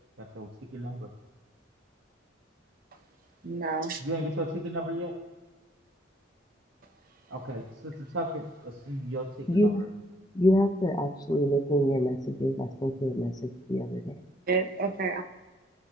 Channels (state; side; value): normal; both; correlation 0.64